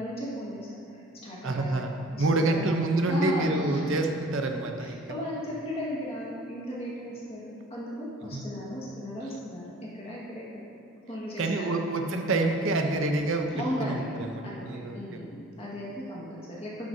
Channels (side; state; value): both; normal; correlation 0.50